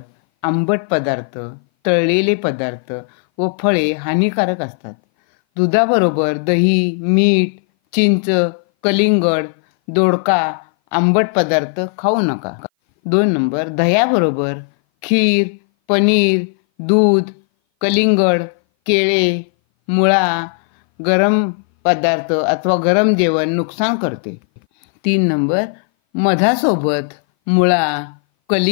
आंबट पदार्थ, तळलेले पदार्थ व फळे हानिकारक असतात. दुधाबरोबर दही, मीठ, चिंच, कलिंगड, दोडका, आंबट पदार्थ खाऊ नका. 2 नंबर, दह्याबरोबर खीर, पनीर, दूध, कलिंगड, केळे, मुळा, गरम पदार्थ अथवा गरम जेवण नुकसान करते. 3 नंबर, मधासोबत मुळा,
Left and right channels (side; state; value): right; silent; 59 dB below the other